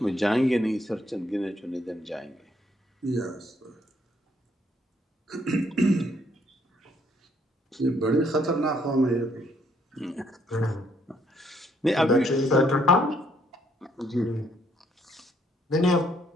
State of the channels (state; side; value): normal; both; correlation 0.69